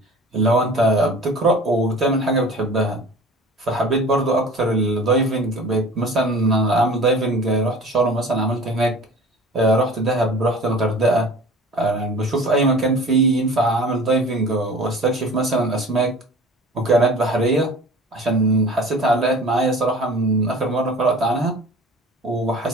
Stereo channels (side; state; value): both; normal; correlation 0.42